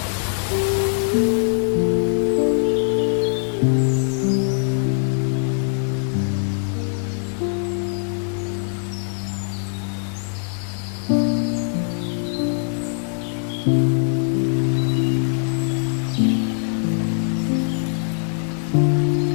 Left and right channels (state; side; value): silent; right; digital silence